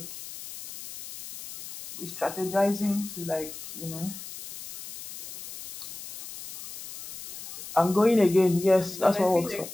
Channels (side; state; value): left; noise; hiss, 13 dB below the sound